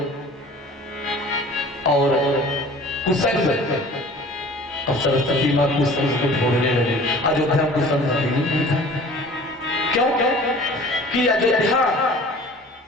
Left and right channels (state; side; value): normal; both; correlation 0.46